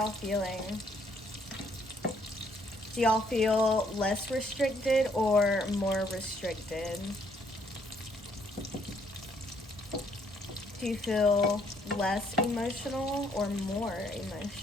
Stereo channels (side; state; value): both; normal; correlation 0.68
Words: feeling? Do y'all feel less restricted or more restricted? Do you feel less emotional or more